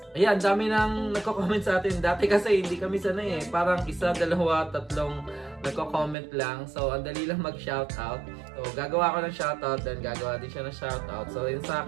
Ayan, dami nang nagko-comment sa atin. Dati kasi hindi kami sanay eh. Parang isa, dalawa, tatlong nagko-comment lang. So, ang dali lang mag-shoutout. So, gagawa ko ng shoutout, then gagawa din siya ng shoutout. So, yun sa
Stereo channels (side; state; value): left; drops out; at 6.2 s